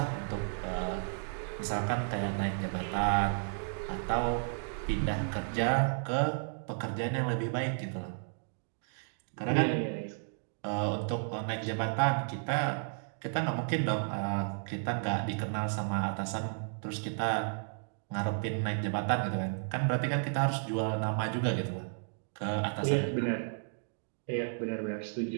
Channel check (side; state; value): left; silent; digital silence